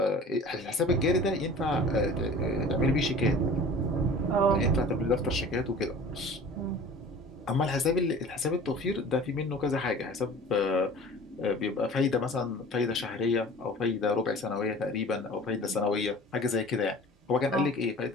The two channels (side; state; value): both; normal; correlation 0.43